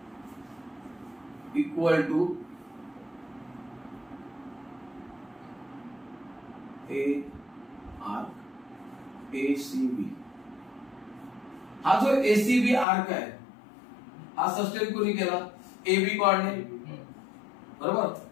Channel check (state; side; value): drops out; right; at 12.9 s